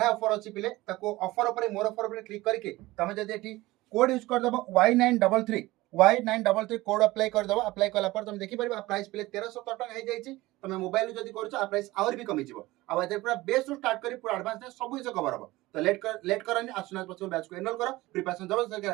ऑफर अच्छी पिले ऑफर उपर मोर ऑफर उपर क्लिक करके तुम जब code use करदेव Y933 Y933 code apply करदेव। Apply कला तुम देखिपार प्राइस पिले 1317 टका हो जाए। तुम मोबाइल जब कर प्राइस आहरी भी कमिज पूरा बेस स्टार्ट कर पूरा एडवांस सब जिन कवर हम। तो लेट करनी आसुना पॉसिबल बैच को एनरोल कर प्रिपरेशन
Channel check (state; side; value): quieter; left; 19.1 dB